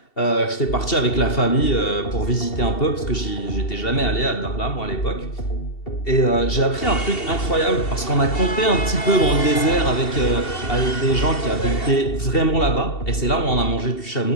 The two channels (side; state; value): right; late; 2.7 ms